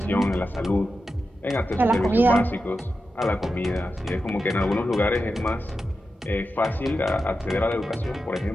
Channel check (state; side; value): normal; both; correlation 0.90